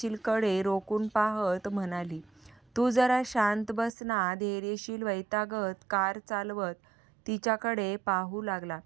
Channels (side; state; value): left; drops out; at 3.9 s